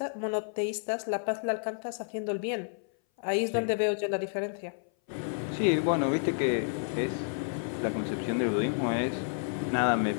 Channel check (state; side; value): silent; right; 57 dB below the other